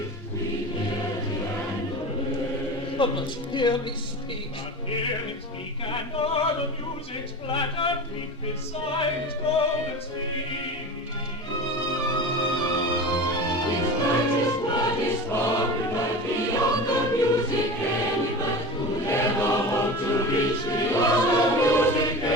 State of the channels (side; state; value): both; normal; correlation 0.31